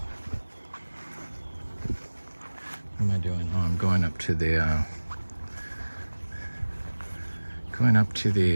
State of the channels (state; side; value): inverted; both; correlation -1.00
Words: What am I doing? Oh, I'm going up to